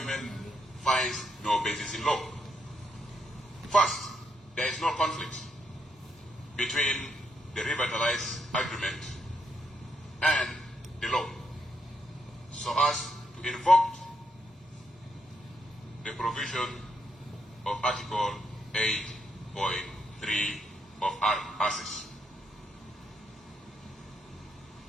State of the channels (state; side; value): normal; both; correlation 0.77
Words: finds no basis in law. First, there is no conflict between the revitalized agreement and the law, so as to invoke the provision of Article 8.3 of ACIS.